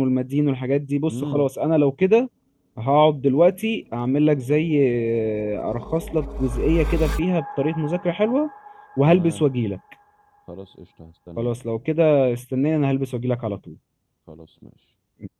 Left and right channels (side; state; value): both; identical; correlation 1.00